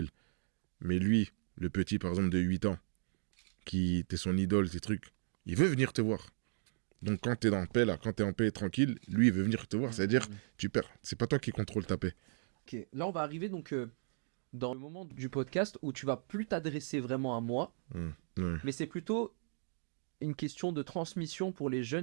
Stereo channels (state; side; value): silent; left; digital silence